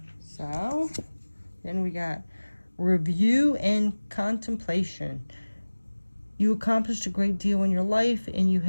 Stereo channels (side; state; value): both; inverted; correlation -1.00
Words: So, then we got review and contemplation. You accomplished a great deal in your life and you